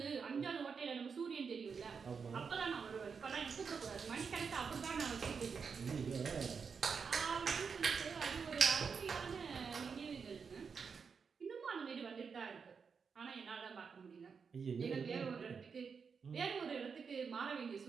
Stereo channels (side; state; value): left; quieter; 5.8 dB